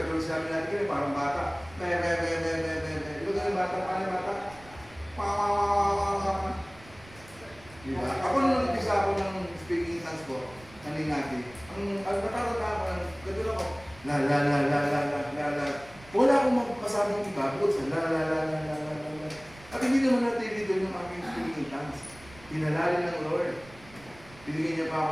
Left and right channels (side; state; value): right; noise; rumble, 22 dB below the sound